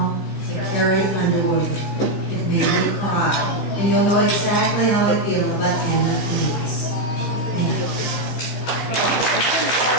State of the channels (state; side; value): late; right; 15 ms